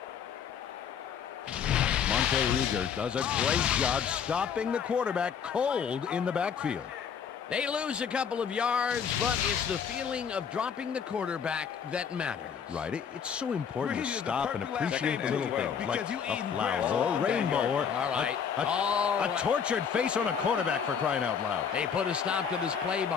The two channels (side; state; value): right; quieter; 7.3 dB